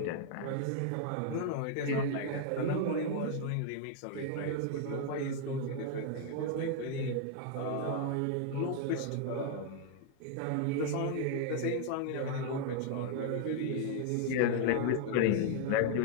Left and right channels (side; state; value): both; different; correlation 0.00